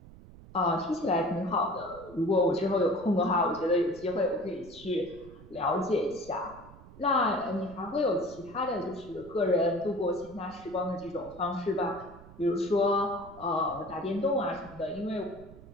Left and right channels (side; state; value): right; noise; rumble, 19 dB below the sound